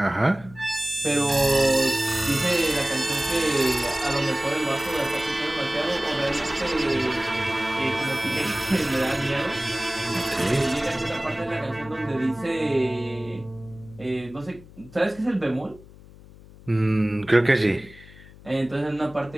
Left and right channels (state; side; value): noise; left; hum, 21 dB below the sound